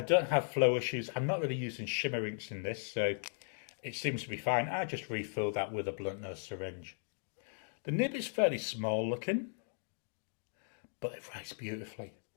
don't have flow issues. I'm not really using shimmer inks in this, so it seems to be fine. I just refill that with a blunt nose syringe. The nib is fairly small looking, but it writes beautifully.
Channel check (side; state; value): right; silent; digital silence